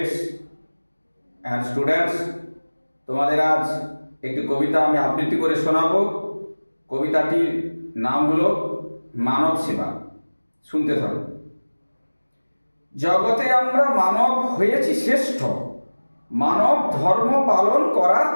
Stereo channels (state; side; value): inverted; both; correlation -1.00